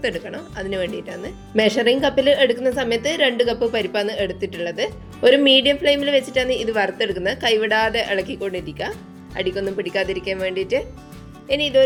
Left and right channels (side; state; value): both; identical; correlation 1.00